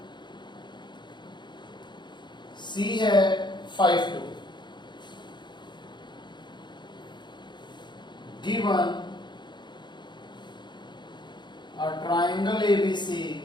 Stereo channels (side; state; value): right; late; 0.22 ms